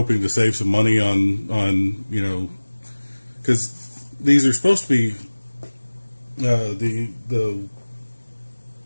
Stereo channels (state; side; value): inverted; both; correlation -1.00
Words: to save some money on because these are supposed to be the